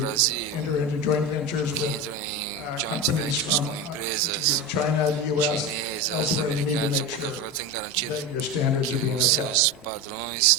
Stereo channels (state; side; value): normal; both; correlation 0.21